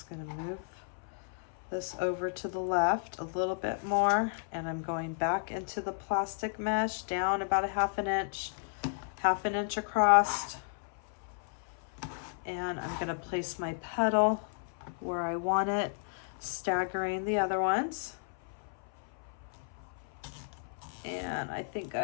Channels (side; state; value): right; silent; 55 dB below the other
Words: going to move this over to the left a little bit more, and I'm going back into the plastic mesh down about a 1/2 inch across, and I'm going to place my petal where I want it, staggering the other ones. And I think